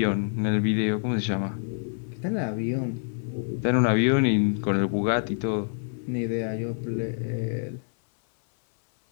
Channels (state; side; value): silent; right; 59 dB below the other